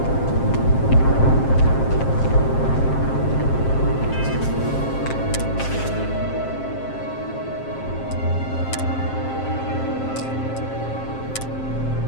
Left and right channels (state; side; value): late; right; 7.5 ms